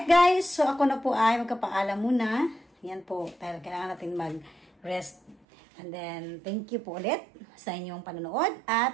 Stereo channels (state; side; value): drops out; left; at 5.4 s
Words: guys, so ako na po ay magkapaalam muna. Yan po, dahil kailangan natin mag-rest. And then, thank you po ulit sa inyong panonood.